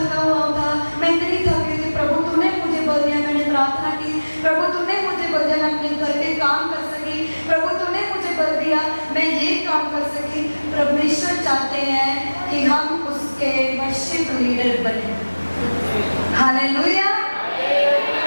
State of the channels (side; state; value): both; inverted; correlation -1.00